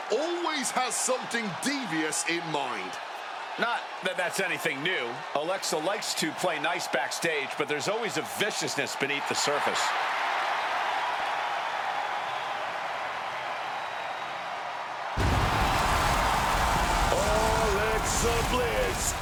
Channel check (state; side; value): identical; both; correlation 1.00